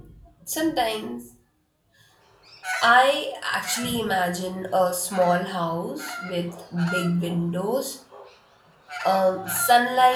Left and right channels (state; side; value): identical; both; correlation 1.00